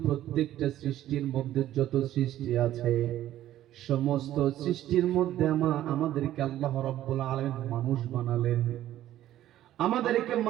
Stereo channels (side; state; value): left; quieter; 13.1 dB